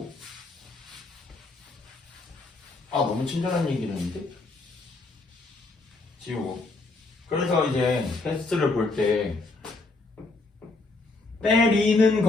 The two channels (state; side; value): quieter; right; 3.3 dB